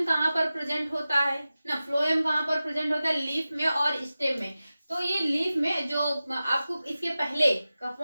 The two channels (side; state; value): both; inverted; correlation -0.95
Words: कहाँ पर प्रेजेंट होता है ना, फ्लोएम कहाँ पर प्रेजेंट होता है, लीफ में और स्टेम में। तो ये लीफ में जो आपको इसके पहले का